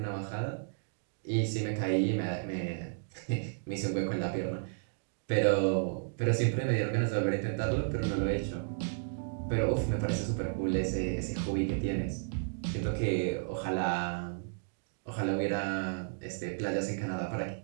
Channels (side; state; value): left; silent; digital silence